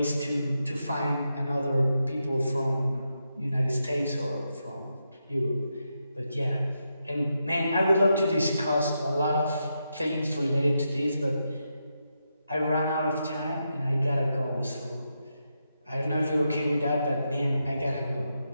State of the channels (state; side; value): inverted; both; correlation -0.85